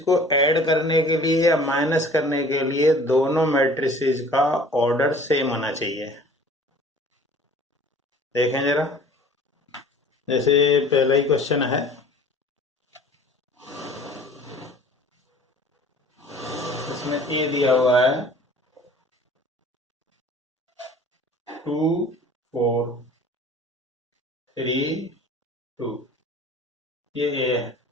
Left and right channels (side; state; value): both; normal; correlation 0.48